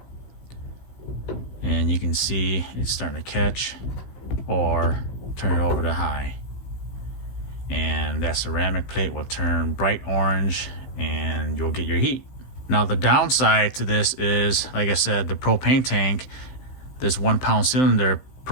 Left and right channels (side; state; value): right; late; 16 ms